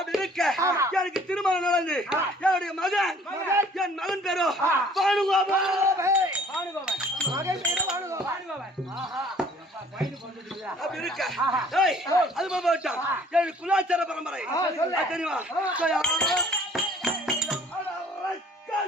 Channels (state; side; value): normal; both; correlation 0.55